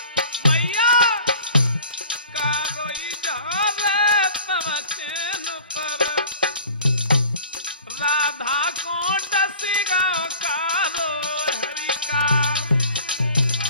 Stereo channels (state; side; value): inverted; both; correlation -0.45